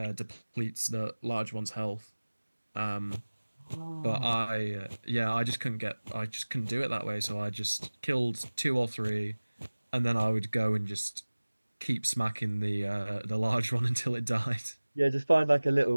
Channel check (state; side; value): inverted; both; correlation -1.00